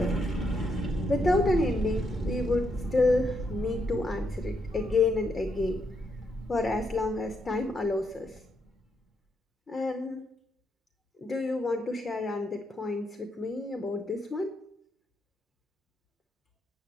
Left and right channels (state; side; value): normal; both; correlation 0.78